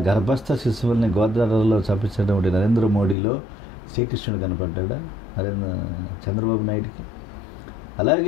గర్భస్థ శిశువుల్ని గోదావరిలో చంపించినటువంటి నరేంద్ర మోడీలో శ్రీకృష్ణుడు కనపడ్డా చంద్రబాబు నాయుడికి?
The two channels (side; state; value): right; drops out; at 3.2 s